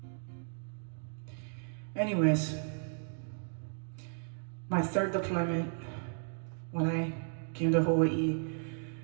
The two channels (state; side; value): silent; left; 55 dB below the other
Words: anyways, my third deployment, when I came to Hawaii,